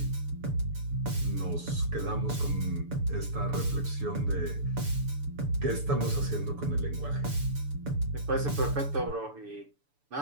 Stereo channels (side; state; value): left; late; 6.9 ms